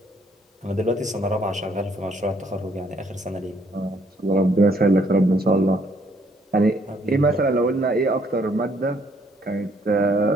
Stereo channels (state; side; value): normal; both; correlation 0.66